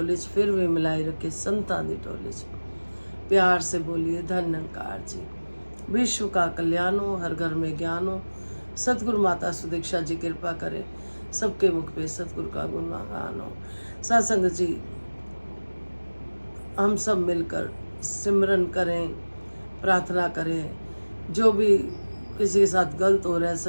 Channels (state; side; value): inverted; both; correlation -1.00